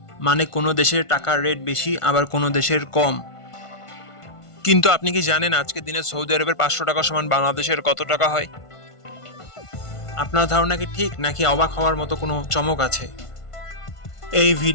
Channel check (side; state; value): right; late; 1.5 ms